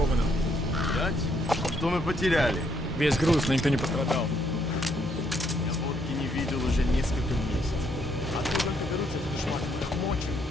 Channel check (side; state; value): both; normal; correlation 0.72